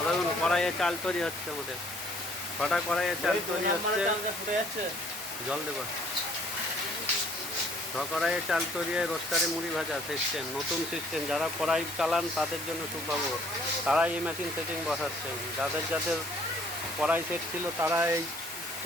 কড়াইয়ে চাল তৈরি হচ্ছে আমাদের। ছটা কড়াইয়ে চাল তৈরি হচ্ছে। জল দেবো। কড়াইয়ে চাল তৈরি হয়ে রোস্টারে মুড়ি ভাজা সিস্টেম, নতুন সিস্টেম। যারা কড়াই চালান তাদের জন্য সুখবর, তারা এই মেশিন সেটিং বসাচ্ছেন। যাদের যাদের কড়াই সেট ছিল তারা এই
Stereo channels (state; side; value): normal; both; correlation 0.59